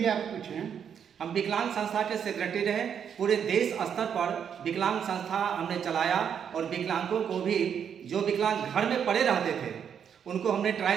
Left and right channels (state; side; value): quieter; left; 8.0 dB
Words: आप कुछ हैं? हम विकलांग संस्था के सेक्रेटरी रहे। पूरे देश स्तर पर विकलांग संस्था हमने चलाया, और विकलांगों को भी, जो विकलांग घर में पड़े रहते थे, उनको हमने